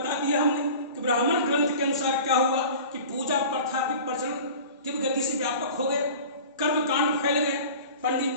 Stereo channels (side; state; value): both; inverted; correlation -0.39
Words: दिया हमने कि ब्राह्मण ग्रंथ के अनुसार क्या हुआ कि पूजा प्रथा की प्रचलन तीव्र गति से व्यापक हो गया। कर्मकांड फैल गए,